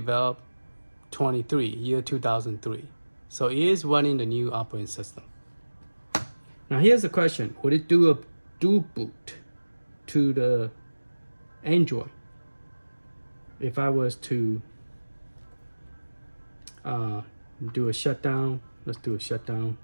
23, year 2003. So it is running the new operating system. Now here's the question, would it do a dual boot to the Android? If I was to do a shutdown, let's do a shutdown.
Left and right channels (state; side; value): inverted; both; correlation -1.00